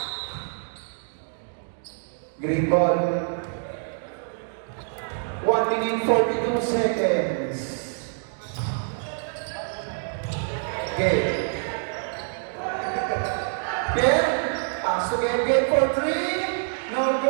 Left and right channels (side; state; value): left; silent; digital silence